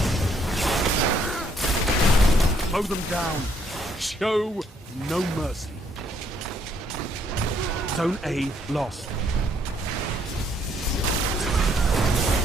Mow them down. Show no mercy. Zone A lost.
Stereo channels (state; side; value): normal; both; correlation 0.69